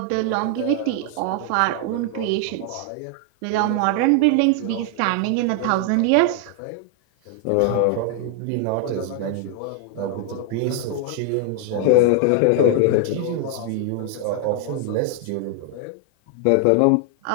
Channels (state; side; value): different; both; correlation 0.00